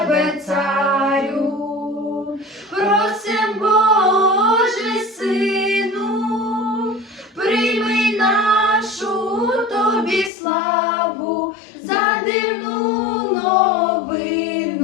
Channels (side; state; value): right; drops out; at 10.3 s